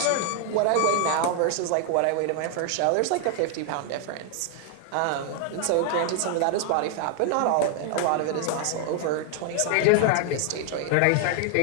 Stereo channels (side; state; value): both; different; correlation 0.00